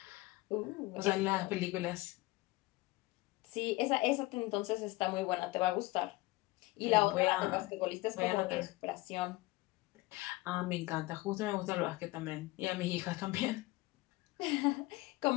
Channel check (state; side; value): quieter; right; 20.6 dB